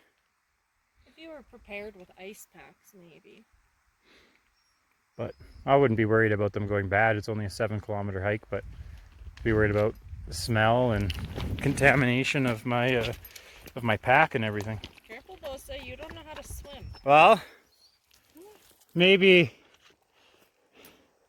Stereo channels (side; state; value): both; identical; correlation 1.00